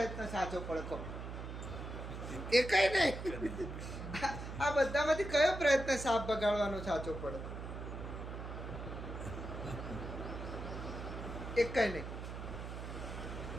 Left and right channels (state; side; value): noise; right; hum, 7 dB below the sound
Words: સાચો પડે કહો? એ કઈ નહીં. આ બધામાંથી કયો પ્રયત્ન સાપ બગાડવાનો સાચો પડે? એક કઈ નહીં.